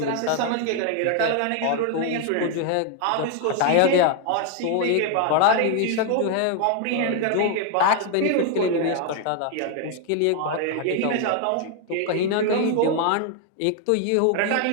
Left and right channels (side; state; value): both; different; correlation 0.01